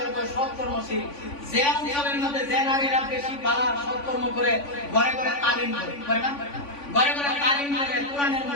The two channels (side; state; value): right; late; 3.5 ms